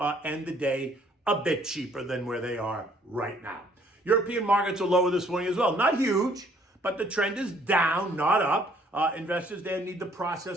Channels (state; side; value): normal; both; correlation 0.62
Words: end the day a bit cheaper than where they are right now. European markets are lower this morning as well. Not huge, but the trend is down, not up. Investors there need to